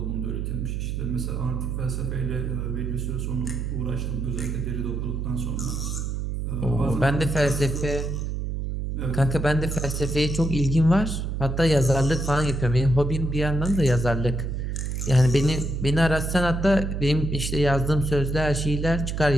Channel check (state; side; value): noise; right; hum, 3 dB below the sound